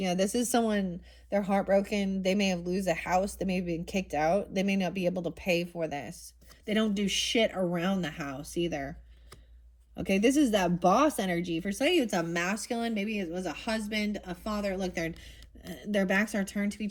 this is someone, they're heartbroken. They may have lose a house. They may have been kicked out. They may not be able to pay for this. They don't do shit around the house either. Okay, this is that boss energy. For some of you, it's a masculine. Maybe it was a husband, a father. Look, their backs are turned to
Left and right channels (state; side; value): identical; both; correlation 1.00